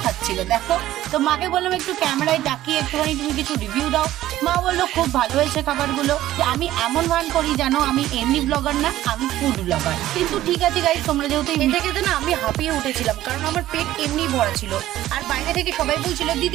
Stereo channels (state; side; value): quieter; left; 14.2 dB